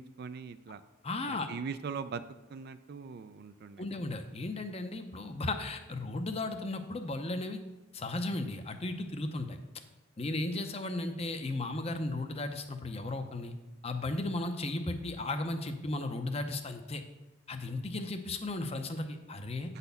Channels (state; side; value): normal; both; correlation 0.58